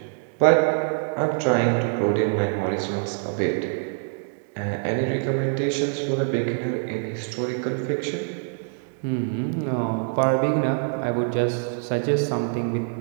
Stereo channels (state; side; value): silent; left; digital silence